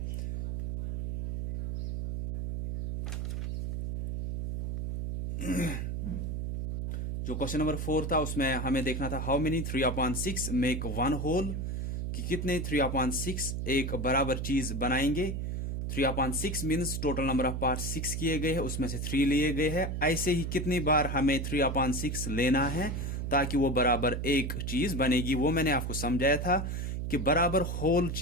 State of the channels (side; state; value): right; noise; hum, 3 dB below the sound